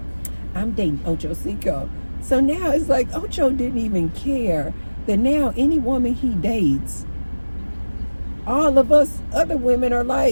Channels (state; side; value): inverted; both; correlation -1.00